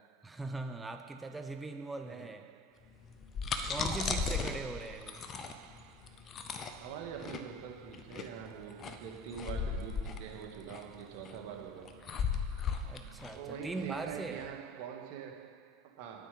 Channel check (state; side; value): normal; both; correlation 0.47